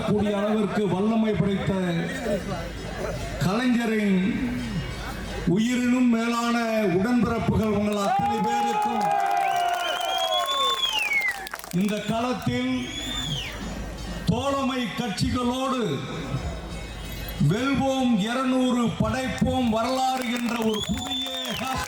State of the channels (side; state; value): both; identical; correlation 1.00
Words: கூடிய அளவிற்கு வல்லமை படைத்த கலைஞரின் உயிரினும் மேலான உடன்பிறப்புகள் உங்கள் அத்தனை பேருக்கும் இந்த களத்தில் தோழமை கட்சிகளோடு வெல்வோம் 200 படைப்போம் வரலாறு என்ற ஒரு புதிய